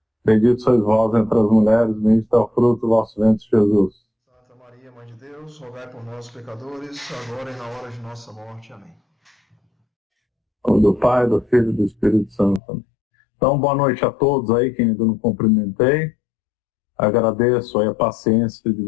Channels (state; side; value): drops out; right; at 12.6 s